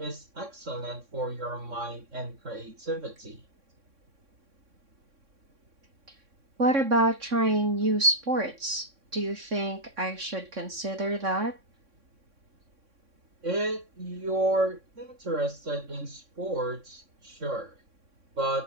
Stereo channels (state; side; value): late; left; 3.6 ms